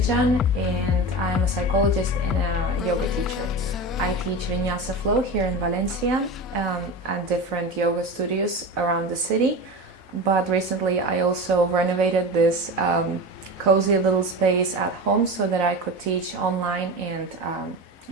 and I'm a psychologist and a yoga teacher. I teach Vinyasa Flow here in Valencia at different yoga studios around the city. But recently I also renovated this cozy little space at home so that I could teach online and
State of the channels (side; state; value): both; normal; correlation 0.27